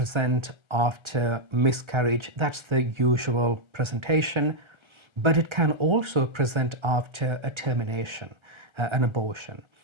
after miscarriage. That's the usual presentation, but it can also present after a termination, an abortion.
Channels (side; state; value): left; late; 1.3 ms